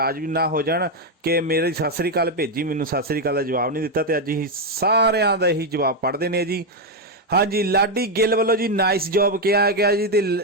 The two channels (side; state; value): both; normal; correlation 0.03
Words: ਵੀ ਨਾ ਹੋ ਜਾਣ ਕਿ ਮੇਰੀ ਸਤਿ ਸ੍ਰੀ ਅਕਾਲ ਭੇਜੀ, ਮੈਨੂੰ ਸਤਿ ਸ੍ਰੀ ਅਕਾਲ ਦਾ ਜਵਾਬ ਨਹੀਂ ਦਿੱਤਾ, ਤੇ ਅੱਜ ਅਸੀਂ ਸਾਰਿਆਂ ਦਾ ਇਹੀ ਜਵਾਬ ਪੜ੍ਹਦੇ ਨੇ ਜੀ। ਹਾਂਜੀ, ਲਾਡੀ ਗਿੱਲ ਵੱਲੋਂ ਜੀ ਨਾਈਸ ਜੌਬ ਕਿਹਾ ਗਿਆ ਜੀ, ਤੇ